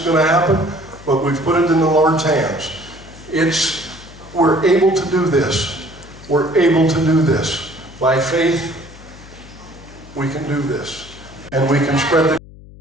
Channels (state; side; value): noise; left; hum, 20 dB below the sound